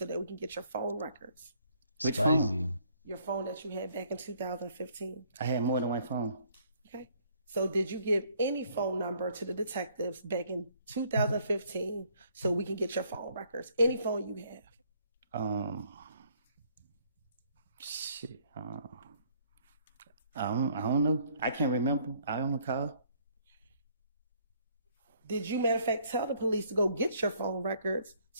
that we can get your phone records? Which Spicy. phone? Your phone that you had back in 2015. I had more than one phone. Okay. So did you give any phone number to the detectives back in 2015 so we can get your phone records? Any phone you have? Shit. I don't know. I can't remember. I don't recall. Did you, matter of fact, tell the police to go get your phone records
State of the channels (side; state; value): both; inverted; correlation -0.64